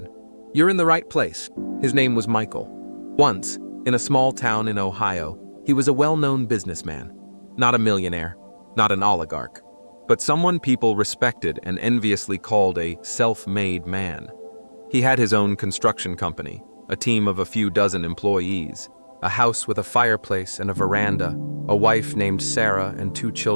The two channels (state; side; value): inverted; both; correlation -1.00